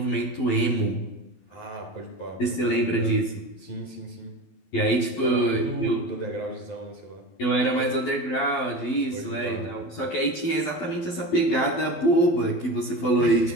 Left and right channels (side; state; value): right; late; 12 ms